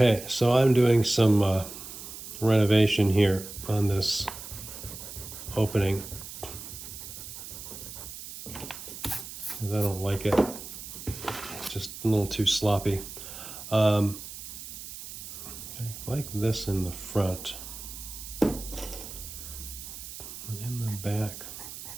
so I'm doing some renovation here on this opening because I don't like it. It's just a little too sloppy. I like this in the front, but in the back,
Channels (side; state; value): right; noise; hiss, 11 dB below the sound